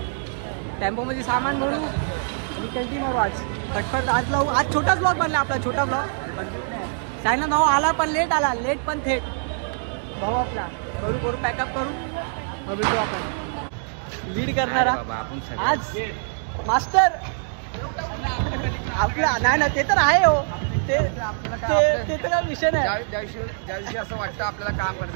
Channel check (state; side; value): silent; left; digital silence